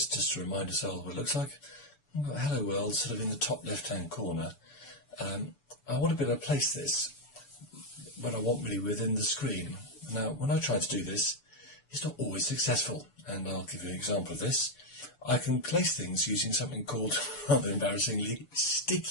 just to remind us all what it looks like, we've got Hello World sort of in the top left hand corner. I want to be able to place this when I want really within the screen. Now when I try to do this, it's not always successful, and I'll give you an example of this. I can place things using something called, rather embarrassingly,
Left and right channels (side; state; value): right; late; 6.9 ms